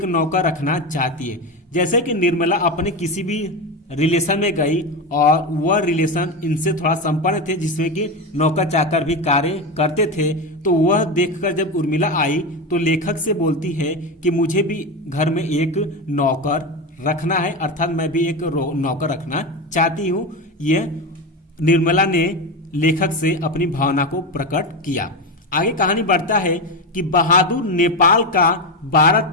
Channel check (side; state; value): both; normal; correlation 0.17